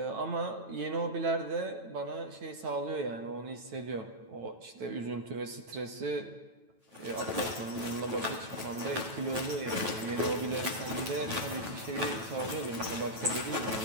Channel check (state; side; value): late; left; 9.1 ms